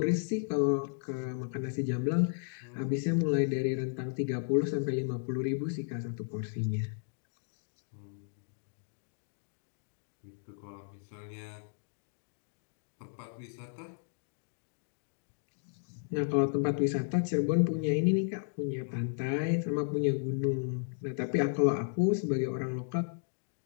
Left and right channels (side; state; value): right; silent; digital silence